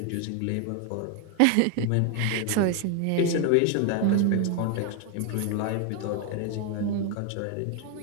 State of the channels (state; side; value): different; both; correlation 0.01